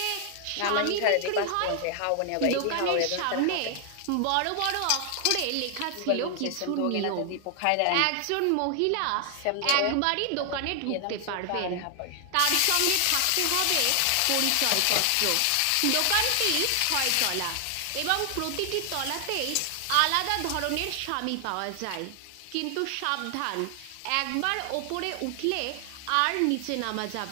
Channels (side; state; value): both; different; correlation 0.00